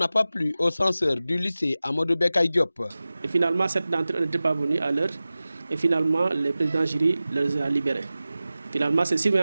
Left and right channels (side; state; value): both; inverted; correlation -0.95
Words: pas plu aux censeurs du lycée Amadou Bekay Diop. Et finalement, cette d'entre eux n'était pas venue à l'heure. Et finalement, le président jury les a libérés. Finalement, ces